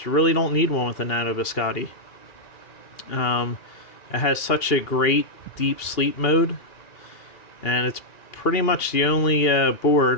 really don't need one with the Nano Biscotte. It has such a great deep sleep mode, and it's pretty much the only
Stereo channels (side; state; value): right; late; 2.8 ms